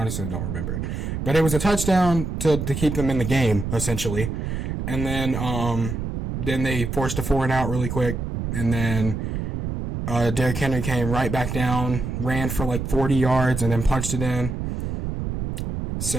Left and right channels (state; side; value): noise; right; rumble, 4 dB below the sound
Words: don't remember. But it was a touchdown to keep them in the game, essentially. And then they forced a 4-and-out really quick. And then Derrick Henry came right back down, ran for like 40 yards, and then punched it in.